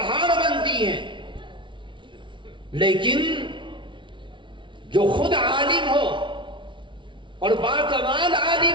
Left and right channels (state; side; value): late; left; 0.24 ms